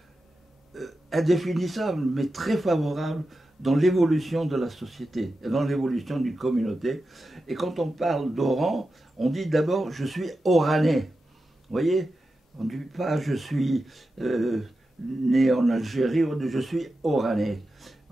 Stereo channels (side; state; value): both; normal; correlation 0.91